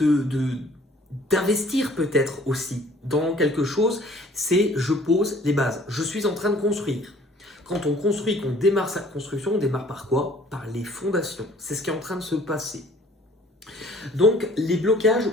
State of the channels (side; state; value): both; normal; correlation 0.55